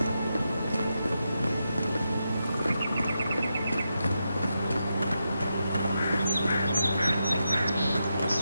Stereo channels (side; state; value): both; inverted; correlation -0.86